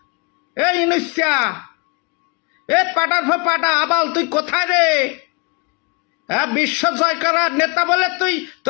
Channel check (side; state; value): right; quieter; 32.1 dB